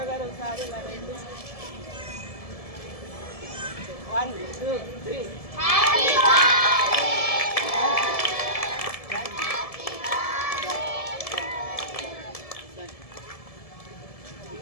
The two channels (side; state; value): right; late; 1.7 ms